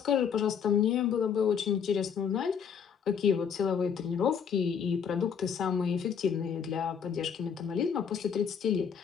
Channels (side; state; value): right; quieter; 7.2 dB